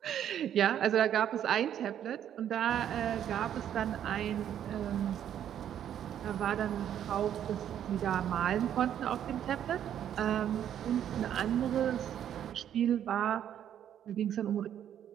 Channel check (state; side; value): quieter; left; 10.1 dB